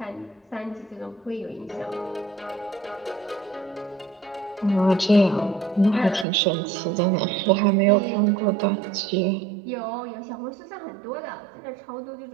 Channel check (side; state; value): left; drops out; at 6.2 s